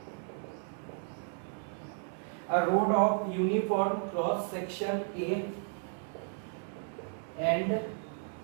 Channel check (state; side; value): silent; left; 55 dB below the other